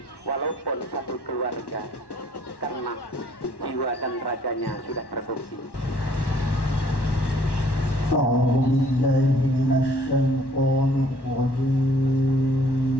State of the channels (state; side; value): late; right; 1.1 ms